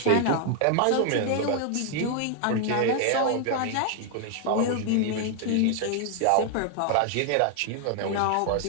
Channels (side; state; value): both; different; correlation 0.00